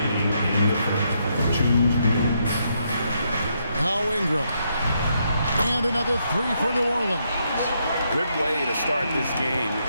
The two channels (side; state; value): both; inverted; correlation -0.77